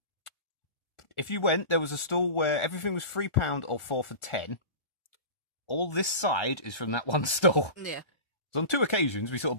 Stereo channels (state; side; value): late; right; 1.3 ms